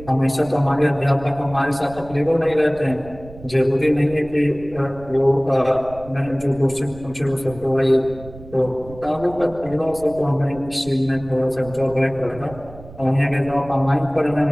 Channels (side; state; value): right; noise; rumble, 18 dB below the sound